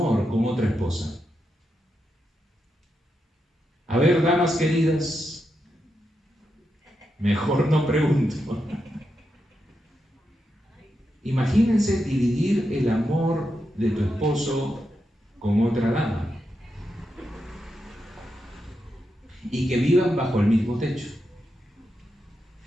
con otra esposa. A ver, damas queridas, mejor no pregunto. Imagínense dividir el amor de tu esposo con otra dama y que vivan bajo el mismo techo.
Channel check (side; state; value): both; normal; correlation 0.86